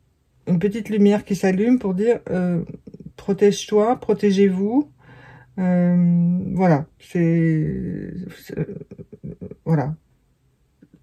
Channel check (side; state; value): both; identical; correlation 1.00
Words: une petite lumière qui s'allume pour dire protège-toi, protégez-vous. Voilà, voilà,